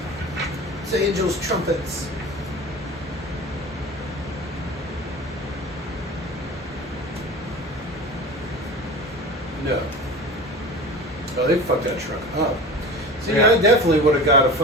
It's Angel's trumpets. No. Oh, they fucked that truck up. See, Yeah. I definitely would have got a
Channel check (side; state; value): both; normal; correlation 0.34